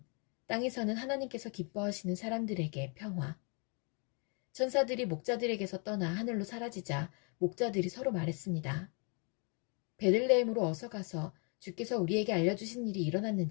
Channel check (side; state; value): right; quieter; 36.9 dB